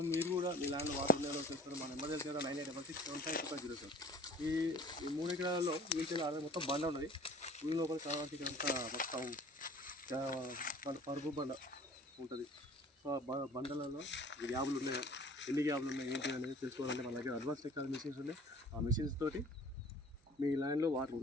మీరు కూడా మీ ల్యాండ్లో వాటర్ ఉండేవో తెలుసుకోవడం మన ఎమర్జెన్సీ 986675 ఈ 3 ఎకరాలలో వీటి మొత్తం బండ ఉన్నది. ఊరి లోపల కావాలంటే ఇదంతా మొత్తం మన పరుపు బండ ఉంటుంది. సో బండలలో గ్యాబులు ఉన్నాయా, ఎన్ని గ్యాబులు ఉన్నాయి ఏంటి అనేది తెలుసుకోవాలంటే మన దగ్గర అడ్వాన్స్ టెక్నాలజీ మిషన్స్ ఉన్నాయి. ఆ మిషన్స్ తోటి మీ ల్యాండ్లో వాటర్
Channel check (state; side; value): normal; both; correlation 0.47